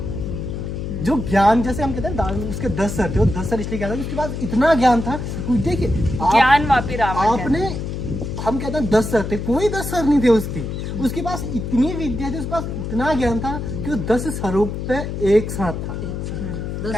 जो ज्ञान, जैसे हम कहते हैं उसके 10 सर थे, वो 10 सर इसलिए कहता है उसके पास इतना ज्ञान था। देखिए ज्ञान वापी रावण आपने, हम कहते हैं 10 सर थे, कोई 10 सर नहीं थे उसके पास इतनी विद्या थी, उसके पास इतना ज्ञान था कि वो 10 सरों पे एक साथ था।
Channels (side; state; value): left; noise; hum, 5 dB below the sound